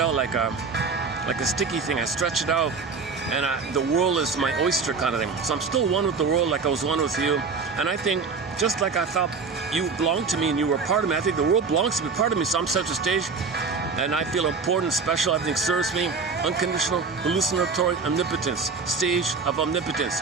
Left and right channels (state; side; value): quieter; left; 4.9 dB